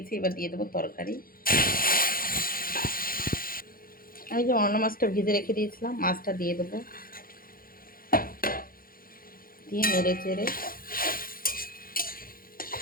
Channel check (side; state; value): right; late; 0.42 ms